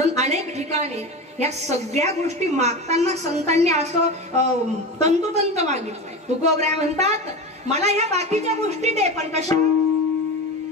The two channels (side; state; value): both; normal; correlation 0.25